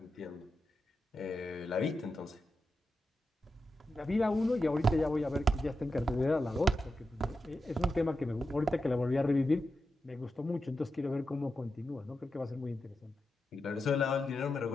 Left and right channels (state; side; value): normal; both; correlation 0.89